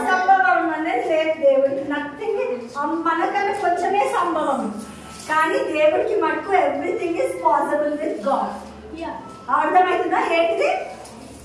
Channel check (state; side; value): identical; both; correlation 1.00